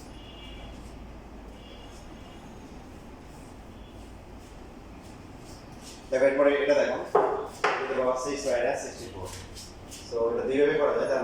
দেখো এরপরে এটা দেখো, এটা বাবা 6 মাইনাস 64। সো এটা দুইভাবে করা যায়, তার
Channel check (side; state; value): both; identical; correlation 1.00